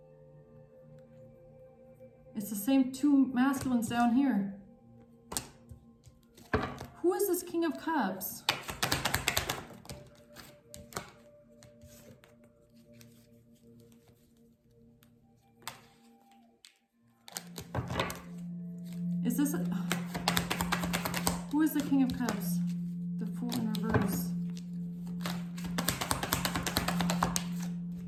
It's the same two masculines down here. Who is this King of Cups? Is this who is the King of Cups? The Fool in reverse.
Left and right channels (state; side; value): identical; both; correlation 1.00